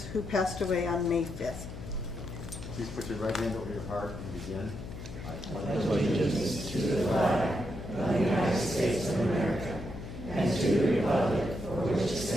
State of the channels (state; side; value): noise; left; hum, 10 dB below the sound